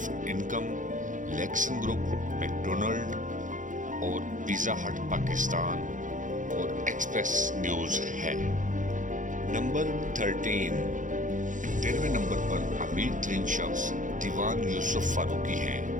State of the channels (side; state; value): left; late; 0.37 ms